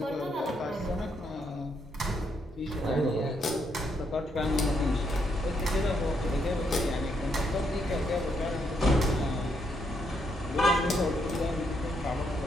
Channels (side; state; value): both; normal; correlation 0.76